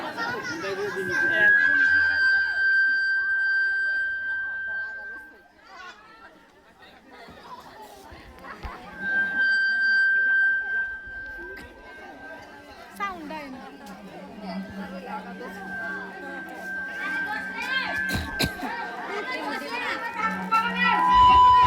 সাউন্ড আয় না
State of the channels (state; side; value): identical; both; correlation 1.00